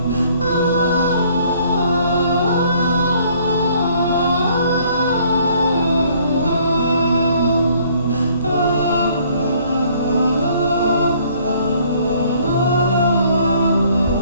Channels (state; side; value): inverted; both; correlation -0.61